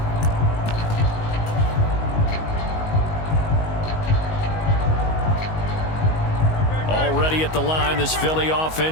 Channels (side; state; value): right; late; 19 ms